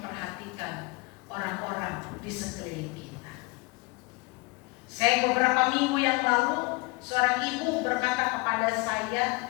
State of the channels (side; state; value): right; quieter; 25.9 dB